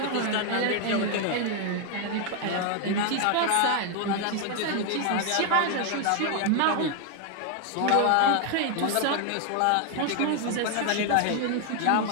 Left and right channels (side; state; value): both; different; correlation 0.00